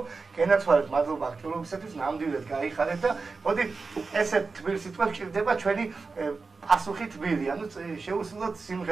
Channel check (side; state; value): left; quieter; 4.3 dB